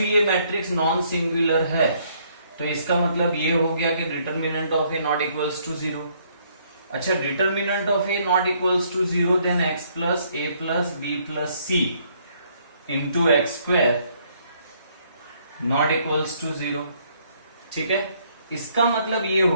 मैट्रिक्स नॉन सिंगुलर है तो इसका मतलब ये हो गया कि determinant of A not equals to 0। अच्छा, determinant of A not equals to 0, then x plus A plus B plus C into X square not equals to 0। ठीक है, इसका मतलब ये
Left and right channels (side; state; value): both; inverted; correlation -0.67